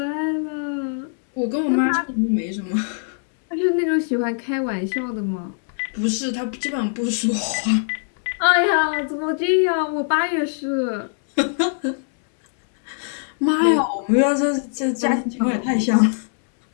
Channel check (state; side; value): silent; right; digital silence